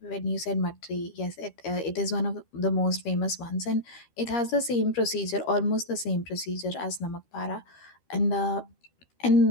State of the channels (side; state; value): right; late; 13 ms